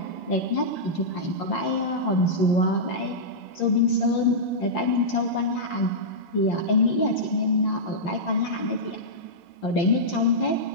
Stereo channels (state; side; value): late; right; 5.7 ms